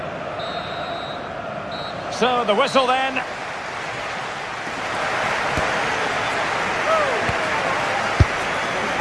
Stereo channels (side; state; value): both; identical; correlation 1.00